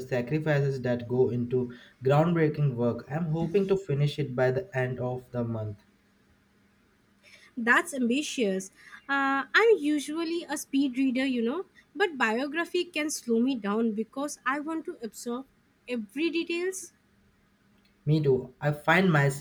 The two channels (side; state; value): both; identical; correlation 1.00